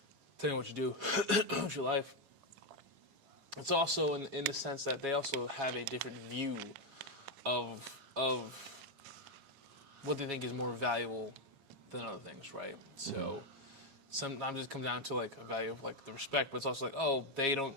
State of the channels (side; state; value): left; late; 7.3 ms